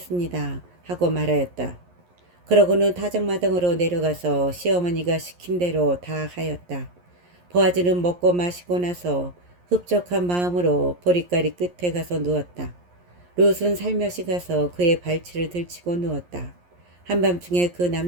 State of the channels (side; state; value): left; late; 11 ms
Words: 하고 말하였다. 그러고는 타작마당으로 내려가서 시어머니가 시킨 대로 다 하였다. 보아즈는 먹고 마시고 나서 흡족한 마음으로 보리가리 끝에 가서 누웠다. 룻은 살며시 가서 그의 발치를 들치고 누웠다. 한밤중에 그